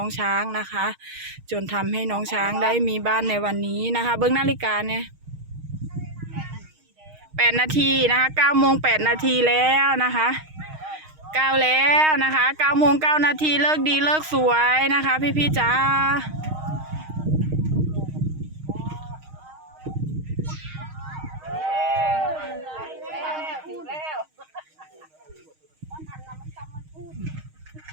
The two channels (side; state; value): left; late; 6.4 ms